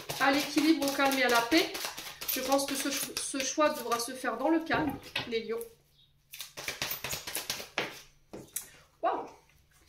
à l'équilibre, au calme et à la paix. Je pense que ce choix devra se faire dans le calme, les lions. Waouh,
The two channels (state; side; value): identical; both; correlation 1.00